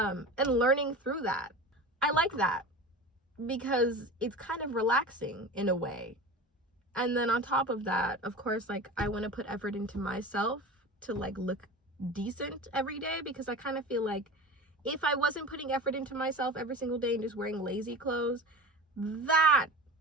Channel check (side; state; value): both; normal; correlation 0.32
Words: learning through that. I like that because it's kind of relaxing in a way. And then on top of that, of course, like, I want to put effort into myself to, like, look decent every day, because I kind of feel like if I wasn't putting effort into myself every single day and just wearing lazy clothes, that